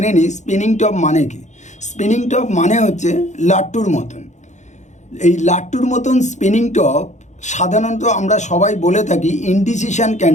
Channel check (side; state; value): right; late; 0.34 ms